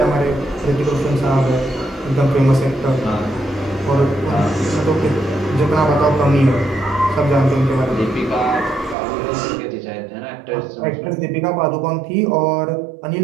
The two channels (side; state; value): left; drops out; at 9.0 s